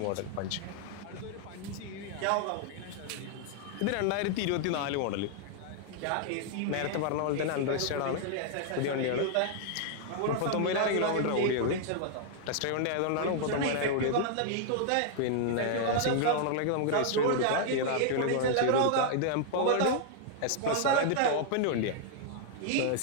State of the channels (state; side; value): different; both; correlation -0.01